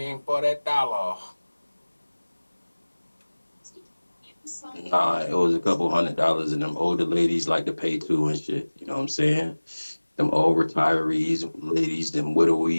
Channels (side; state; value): both; inverted; correlation -1.00